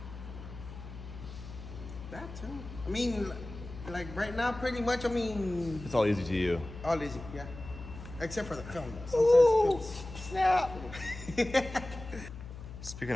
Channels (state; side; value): noise; left; hum, 13 dB below the sound